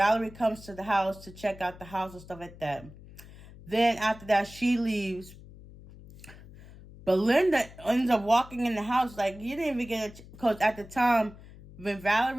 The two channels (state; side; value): noise; left; hum, 19 dB below the sound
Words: comes to the house to check out the house and stuff like that. Then after that, she leaves. Belinda ends up walking in the house like you didn't even get it, because at the time when